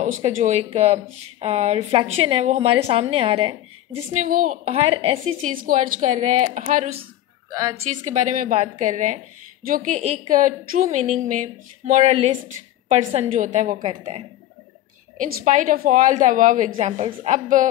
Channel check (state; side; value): quieter; right; 13.6 dB